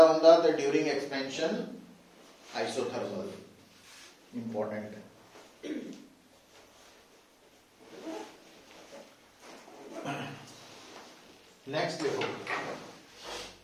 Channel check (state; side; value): identical; both; correlation 1.00